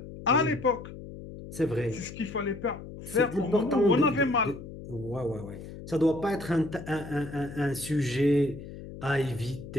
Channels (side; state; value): left; noise; hum, 13 dB below the sound